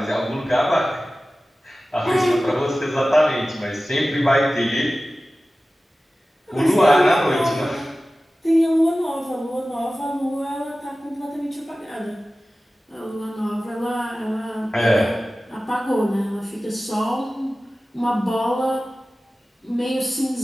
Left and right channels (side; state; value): both; normal; correlation 0.96